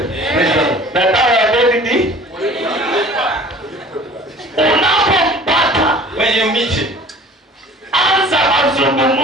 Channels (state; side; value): normal; both; correlation 0.46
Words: Na dawa ya deni ni unapompata, When you meet him, anza